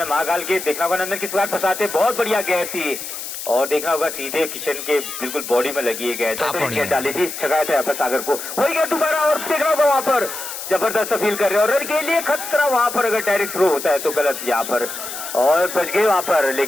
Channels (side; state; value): left; noise; hiss, 8 dB below the sound